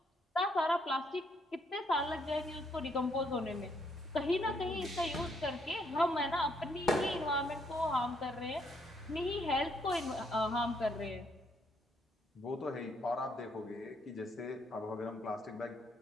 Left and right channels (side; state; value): both; normal; correlation 0.72